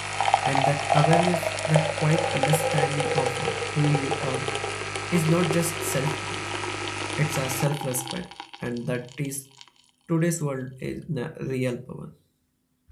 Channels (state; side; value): identical; both; correlation 1.00